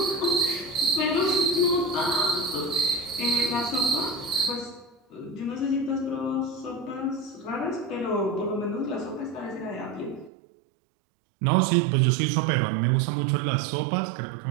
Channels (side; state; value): left; drops out; at 10.3 s